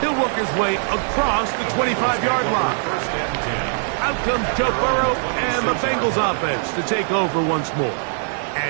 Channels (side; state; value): left; silent; 58 dB below the other